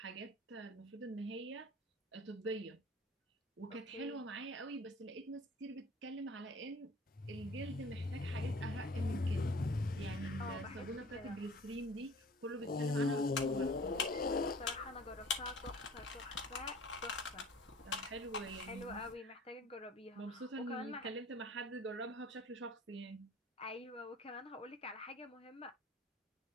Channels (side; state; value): both; normal; correlation 0.47